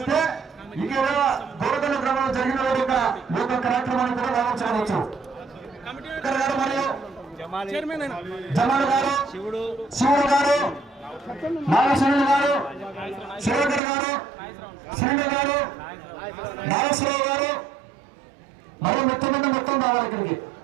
ఇక్కడ దూరదల గ్రామంలో జరిగిన యొక్క కార్యక్రమాన్ని కూడా రావచ్చు. మరియు జమాల్ గారు, శివుడు గారు, నాగేశ్వరుడు గారు, శివకర్ గారు, శ్రీను గారు, నాగేశ్వరరావు గారు మరియు మొత్తం రావాలి. ఇక్కడికి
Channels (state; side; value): drops out; left; at 13.8 s